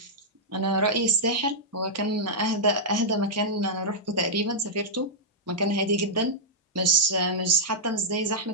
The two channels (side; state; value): both; normal; correlation -0.10